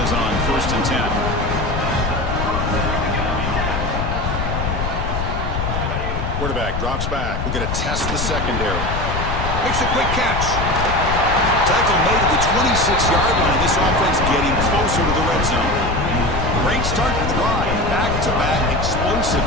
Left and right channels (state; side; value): noise; left; rumble, 3 dB below the sound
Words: on 1st and 10. Quarterback drops back. We're going to test the secondary. Makes a quick catch. Tackle made at the 26-yard line. This offense getting closer to the red zone. Great start to the drive. Back-to-back explosive